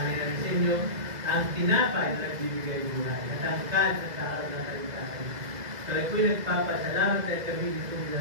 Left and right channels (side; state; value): left; late; 2.0 ms